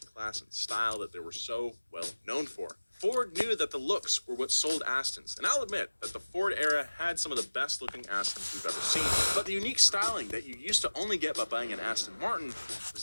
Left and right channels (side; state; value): both; inverted; correlation -1.00